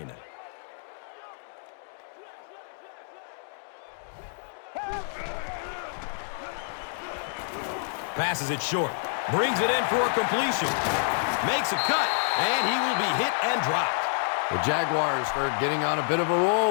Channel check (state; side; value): silent; right; digital silence